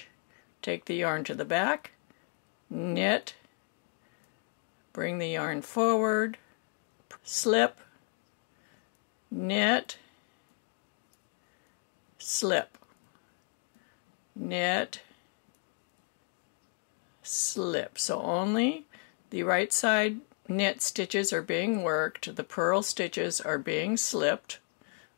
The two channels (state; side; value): quieter; right; 34.6 dB